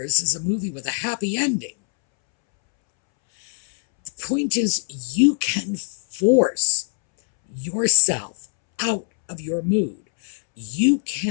is a movie with a happy ending. The point is, you can force yourself out of your mood. You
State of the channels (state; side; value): silent; right; 64 dB below the other